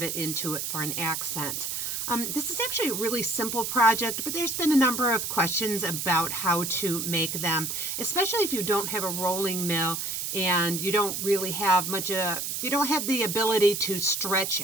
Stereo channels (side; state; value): right; noise; hiss, 3 dB below the sound